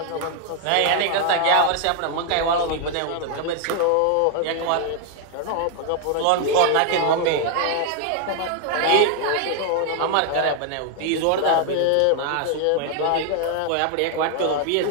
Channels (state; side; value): different; both; correlation 0.00